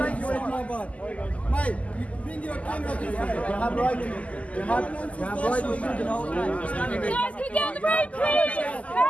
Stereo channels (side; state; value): right; late; 0.068 ms